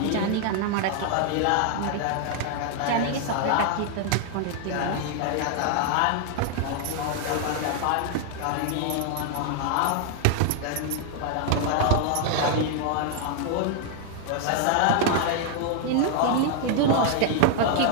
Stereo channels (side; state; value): both; different; correlation 0.00